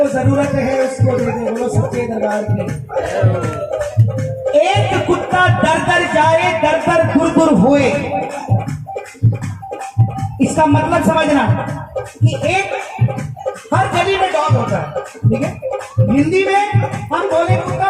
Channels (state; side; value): identical; both; correlation 1.00